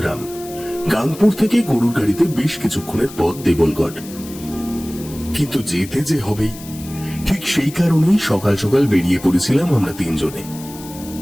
গাংপুর থেকে গরুর গাড়িতে বেশ কিছুক্ষণের পথ দেবলগড়। কিন্তু যেতে যে হবেই, ঠিক সেই কারণেই সকাল সকাল বেরিয়ে পড়েছিলাম আমরা তিনজনে।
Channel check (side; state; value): left; noise; hiss, 16 dB below the sound